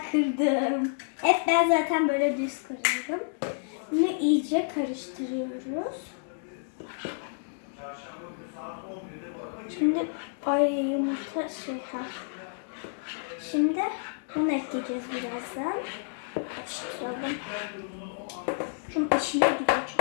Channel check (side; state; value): right; silent; digital silence